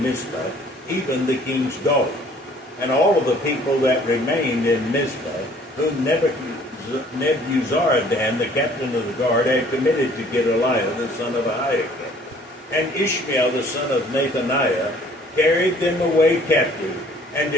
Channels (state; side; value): normal; both; correlation 0.56